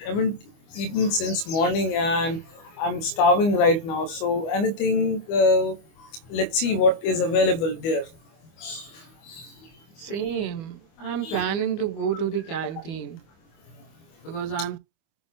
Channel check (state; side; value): late; right; 25 ms